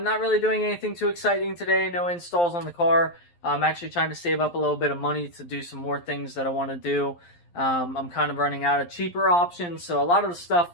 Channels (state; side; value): late; right; 12 ms